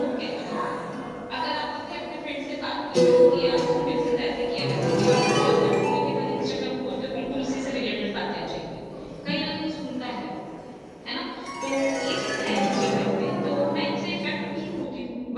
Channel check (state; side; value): identical; both; correlation 1.00